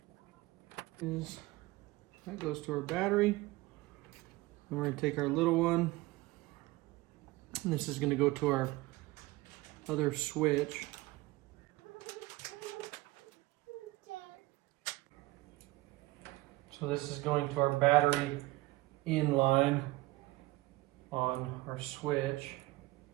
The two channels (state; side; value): quieter; left; 19.9 dB